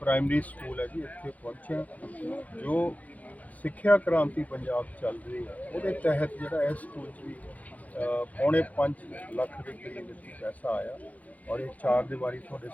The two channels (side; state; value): right; late; 0.075 ms